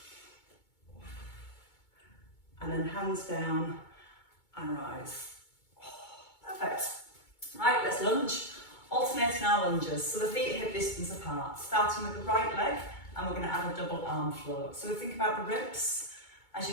And then hands down and rise. Perfect. Right, let's lunge. Alternating our lunges, so the feet are hip distance apart, starting with the right leg, and we're going to add a double arm float. So we think about the ribs. As you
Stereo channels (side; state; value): right; late; 2.2 ms